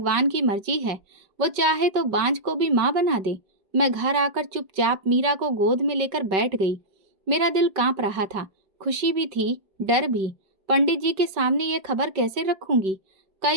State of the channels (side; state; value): left; late; 5.3 ms